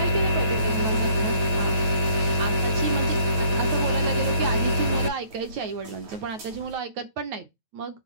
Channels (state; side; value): late; left; 9.2 ms